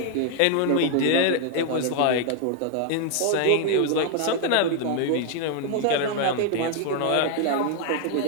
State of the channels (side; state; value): both; different; correlation 0.00